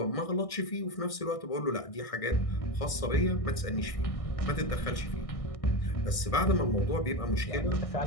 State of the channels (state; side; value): late; right; 1.6 ms